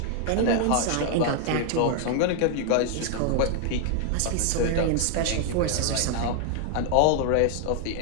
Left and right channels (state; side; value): different; both; correlation 0.00